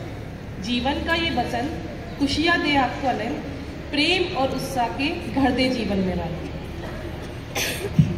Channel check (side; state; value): both; identical; correlation 1.00